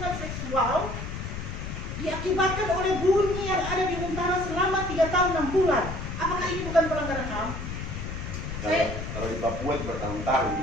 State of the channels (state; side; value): noise; left; rumble, 6 dB below the sound